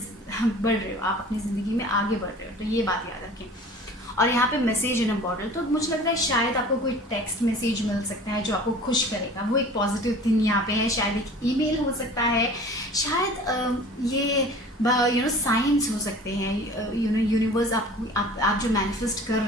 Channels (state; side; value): normal; both; correlation 0.44